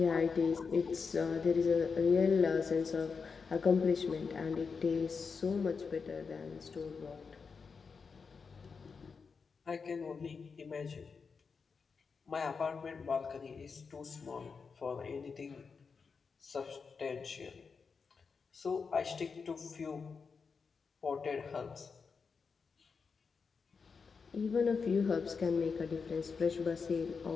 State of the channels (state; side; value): quieter; right; 5.3 dB